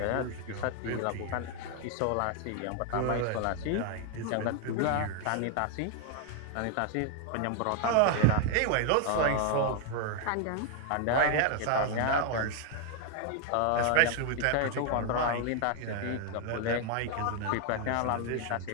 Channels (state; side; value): different; both; correlation 0.01